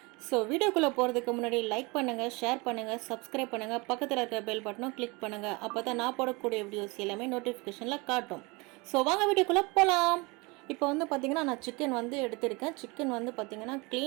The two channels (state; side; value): quieter; left; 26.7 dB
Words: ஸோ வீடியோக்குள்ளே போகிறதுக்கு முன்னாடி லைக் பண்ணுங்கள், ஷேர் பண்ணுங்கள், சப்ஸ்கிரைப் பண்ணுங்கள், பக்கத்தில் இருக்கிற பெல் பட்டனும் கிளிக் பண்ணுங்கள். அப்போ தான் நான் போடக்கூடிய வீடியோஸ் எல்லாமே நோட்டிஃபிகேஷனில் காட்டும். ஸோ வாங்க வீடியோக்குள்ளே போகலாம். இப்போ வந்து பார்த்திங்கன்னா நான் சிக்கன் வந்து எடுத்திருக்கேன். சிக்கன் வந்து பார்த்திங்கன்னா